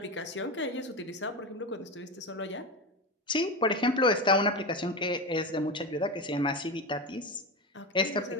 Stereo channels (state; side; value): normal; both; correlation 0.19